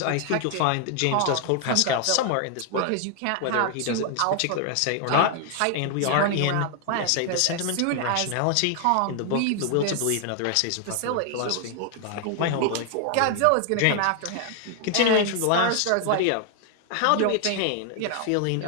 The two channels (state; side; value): different; both; correlation 0.00